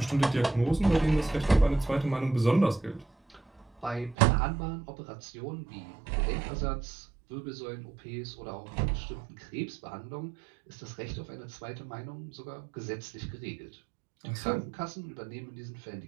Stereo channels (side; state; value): left; drops out; at 4.2 s